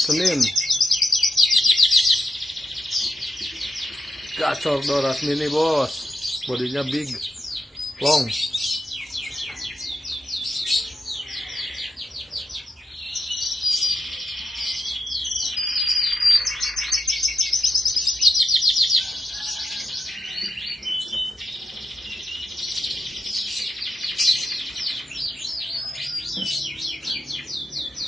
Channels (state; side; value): normal; both; correlation 0.85